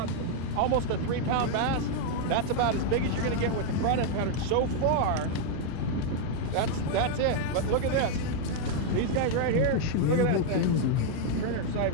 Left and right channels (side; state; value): both; different; correlation 0.00